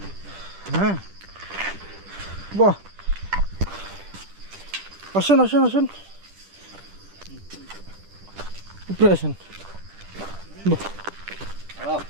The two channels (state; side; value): late; left; 10 ms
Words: হ্যাঁ বাহ আসেন আসেন আসেন উপরে আসেন বাহ